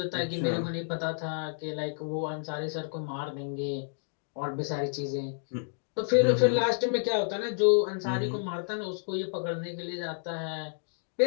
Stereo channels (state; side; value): silent; right; digital silence